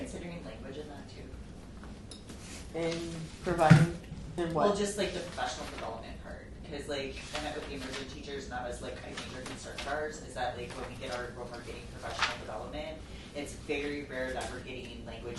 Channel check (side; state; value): both; identical; correlation 1.00